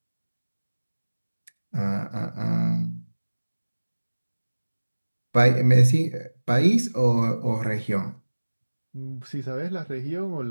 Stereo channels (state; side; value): inverted; both; correlation -1.00